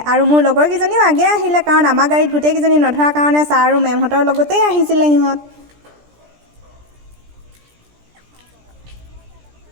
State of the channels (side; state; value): left; late; 17 ms